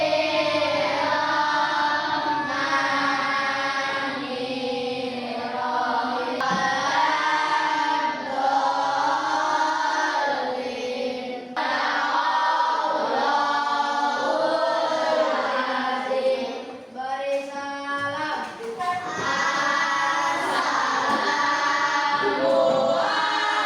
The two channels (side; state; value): both; identical; correlation 1.00